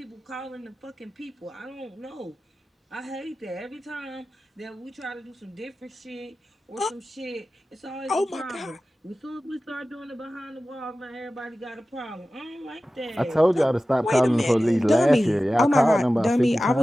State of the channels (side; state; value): both; normal; correlation 0.95